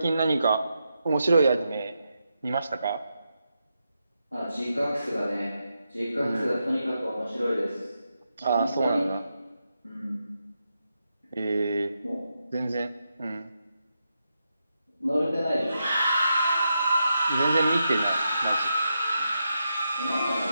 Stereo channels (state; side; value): inverted; both; correlation -0.85